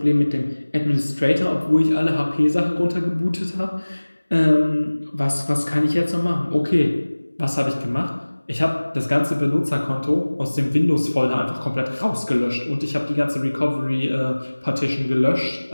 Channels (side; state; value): both; inverted; correlation -1.00